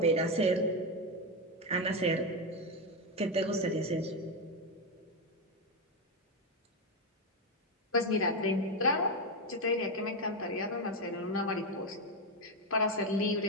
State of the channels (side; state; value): both; normal; correlation 0.08